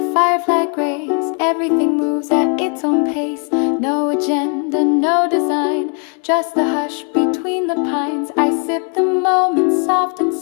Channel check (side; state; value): right; quieter; 38.6 dB